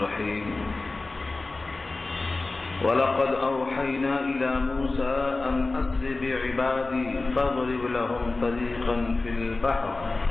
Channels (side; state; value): right; quieter; 3.4 dB